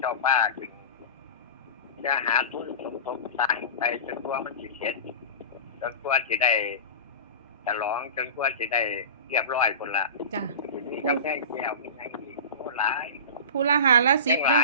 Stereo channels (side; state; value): both; inverted; correlation -0.30